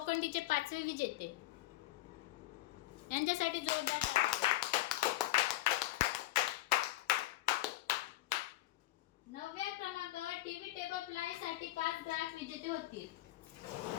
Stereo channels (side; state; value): right; quieter; 16.7 dB